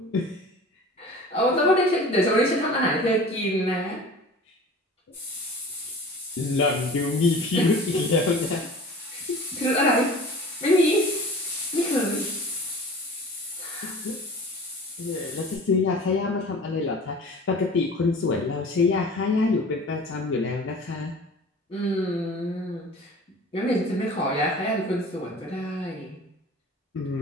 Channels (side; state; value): both; normal; correlation 0.41